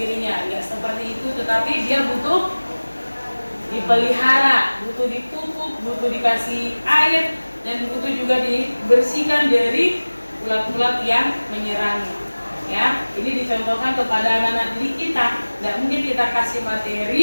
Ya, seperti itu, tetapi dia butuh dipelihara, butuh dipupuk, butuh dikasih air, dan butuh juga dibersihkan dari ulat-ulat yang menyerangnya. Ya, ini dicontohkan kepada anak-anak didik kita. Tidak mungkin kita kita kasih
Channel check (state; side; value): inverted; both; correlation -1.00